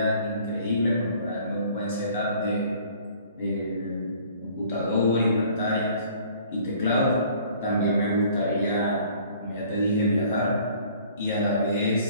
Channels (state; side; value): inverted; both; correlation -0.54